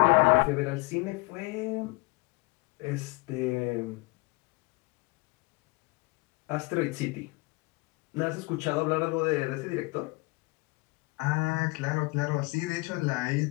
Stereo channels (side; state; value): right; quieter; 26.3 dB